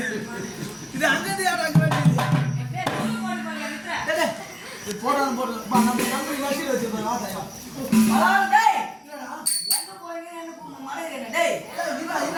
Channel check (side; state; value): both; identical; correlation 1.00